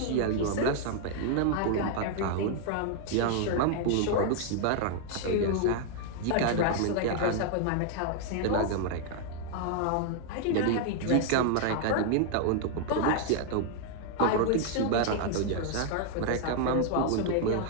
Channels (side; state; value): both; different; correlation 0.00